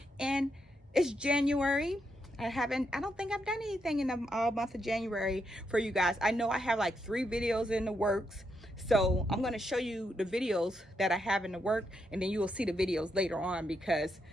and it's January. I don't think I've done anything in the month of January for you guys. I know I have like 3 videos in the works, so I'm going to show you the videos that I have in the work, and then you will see the videos later on because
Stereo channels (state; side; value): normal; both; correlation 0.81